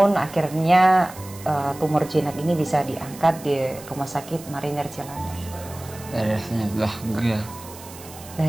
akhirnya tumor jinak ini bisa diangkat di Rumah Sakit Marinir Cilandak. rasanya bahagia.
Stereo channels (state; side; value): noise; right; hiss, 17 dB below the sound